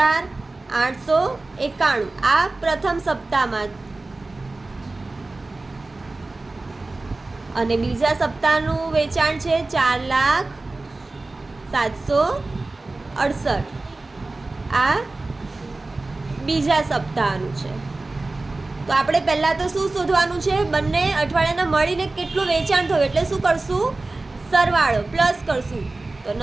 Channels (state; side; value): quieter; left; 3.2 dB